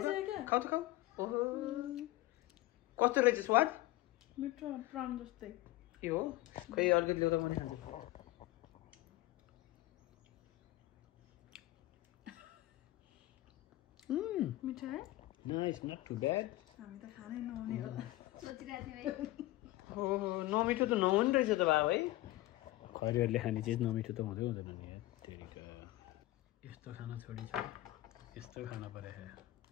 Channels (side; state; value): right; quieter; 17.3 dB